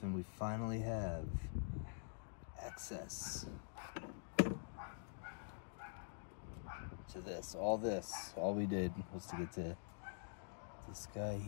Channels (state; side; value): silent; right; digital silence